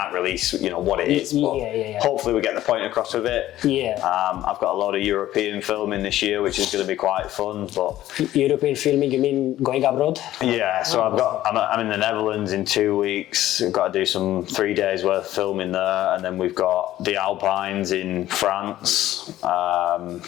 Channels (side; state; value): right; quieter; 14.0 dB